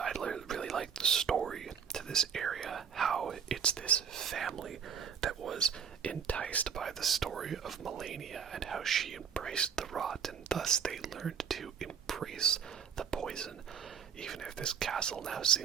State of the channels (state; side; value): quieter; left; 7.1 dB